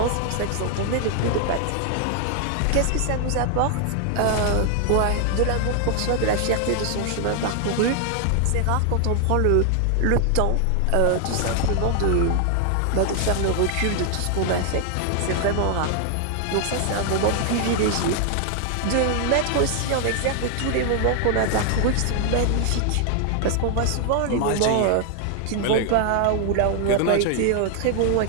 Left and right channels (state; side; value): different; both; correlation 0.00